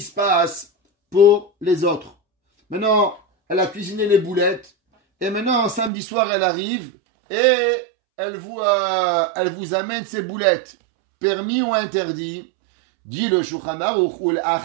se passe pour les autres? Maintenant, elle a cuisiné les boulettes, et maintenant, samedi soir, elle arrive, et elle vous amène ses boulettes. Permis ou interdit? Dit le Shulchan Aruch, ul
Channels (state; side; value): drops out; left; at 5.9 s